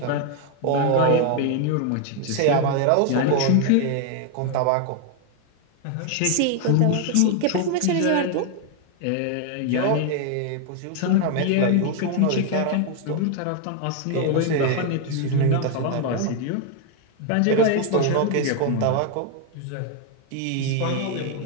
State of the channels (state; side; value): different; both; correlation 0.01